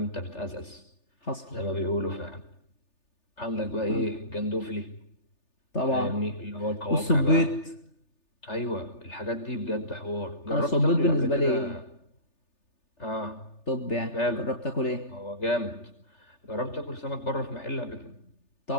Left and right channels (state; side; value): late; right; 3.4 ms